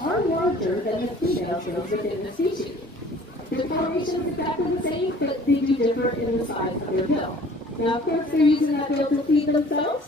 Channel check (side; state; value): both; normal; correlation 0.51